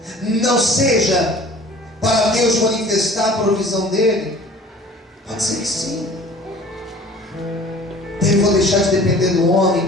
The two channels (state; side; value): normal; both; correlation 0.47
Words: não seja para Deus manifestar a provisão dele? Pode ser que sim. Devo deixar de depender do